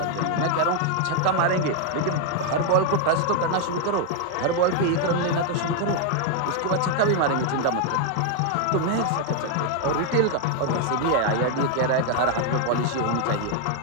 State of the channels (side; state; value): both; different; correlation 0.00